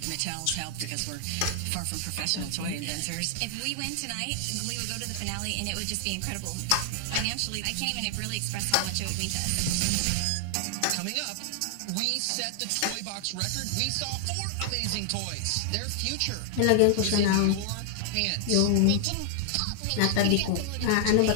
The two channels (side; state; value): both; different; correlation 0.00